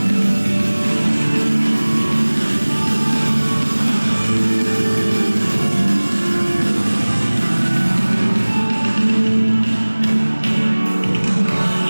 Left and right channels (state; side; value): inverted; both; correlation -1.00